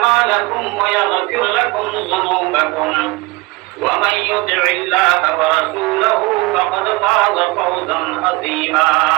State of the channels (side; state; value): left; quieter; 22.6 dB